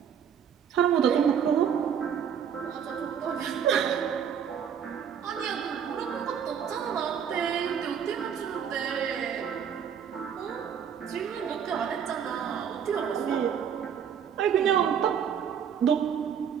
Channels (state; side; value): quieter; left; 8.0 dB